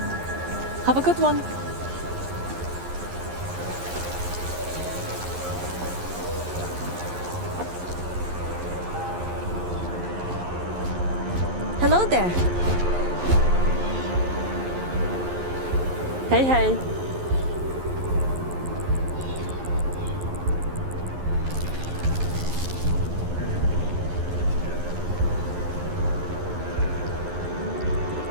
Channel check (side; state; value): left; late; 11 ms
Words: Have a good one. Hello there. Hey, hey.